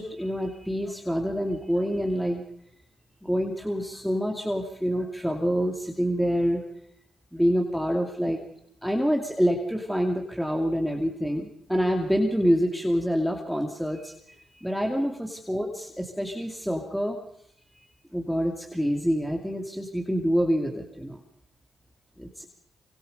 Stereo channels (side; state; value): both; normal; correlation 0.96